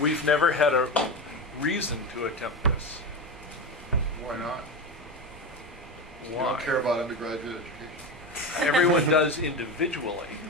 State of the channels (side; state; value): both; normal; correlation 0.20